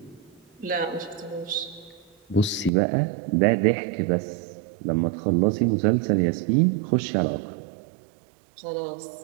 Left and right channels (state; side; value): drops out; left; at 2.7 s